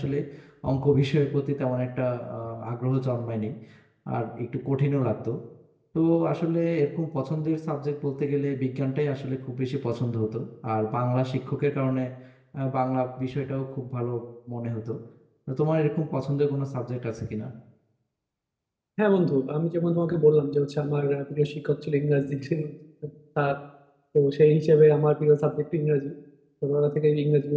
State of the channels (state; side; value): identical; both; correlation 1.00